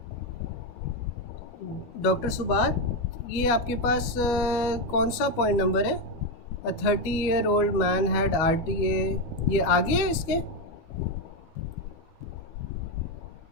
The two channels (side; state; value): right; late; 12 ms